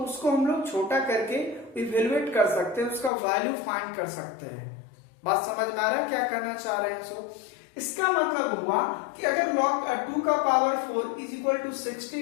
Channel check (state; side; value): drops out; right; at 3.1 s